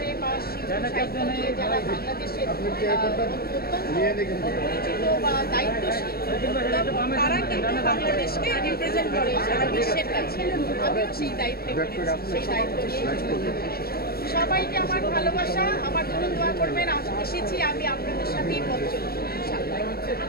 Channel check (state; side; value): late; right; 0.44 ms